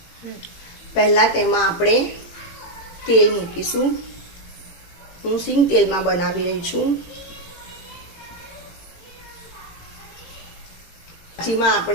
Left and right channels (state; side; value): late; right; 18 ms